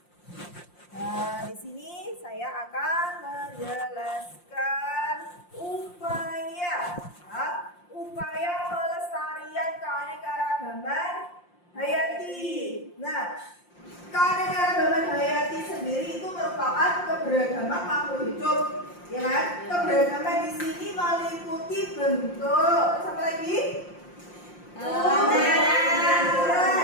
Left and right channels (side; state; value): right; late; 5.7 ms